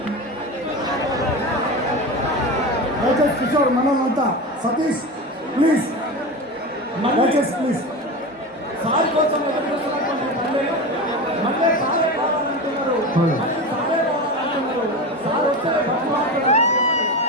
దయచేసి కిషోర్ మనల్నంతా సతీష్ ప్లీజ్ దయచేసి ప్లీజ్. సార్ కోసం ఎదురు చూస్తున్నటువంటి పల్లెలు మళ్ళీ సారే కావాలంటున్నారు, మళ్ళీ సారే కావాలంటున్నారు. సార్ వస్తే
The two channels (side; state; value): both; normal; correlation 0.25